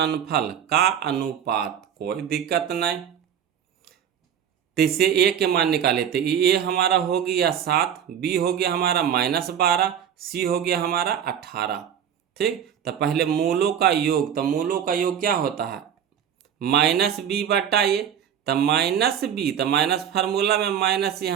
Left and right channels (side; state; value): left; quieter; 8.9 dB